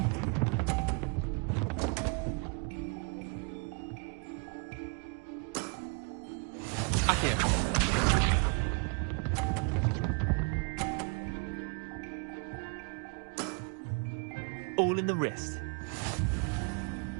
All in the wrist.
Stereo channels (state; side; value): quieter; left; 37.3 dB